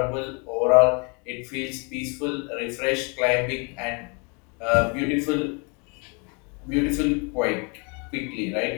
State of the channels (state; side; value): quieter; right; 33.6 dB